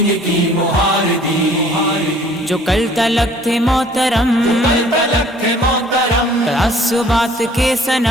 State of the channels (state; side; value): normal; both; correlation 0.54